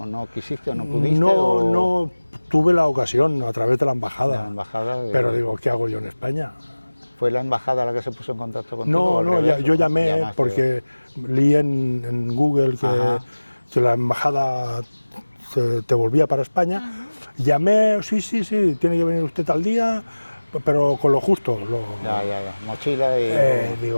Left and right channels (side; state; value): both; inverted; correlation -1.00